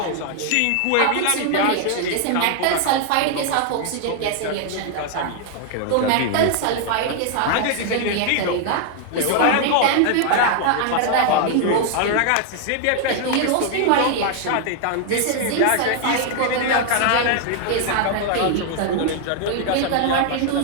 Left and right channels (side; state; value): both; different; correlation 0.00